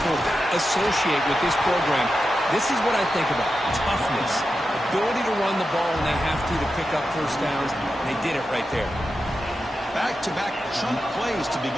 associate with this program. This is what I think about. Toughness, ability to run the ball when they have to pick up first downs, and they did it right there. Back-to-back chunk plays to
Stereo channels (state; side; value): normal; both; correlation 0.90